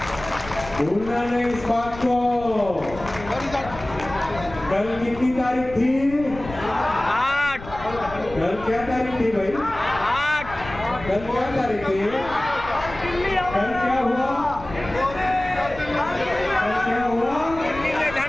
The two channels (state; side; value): noise; left; rumble, 14 dB below the sound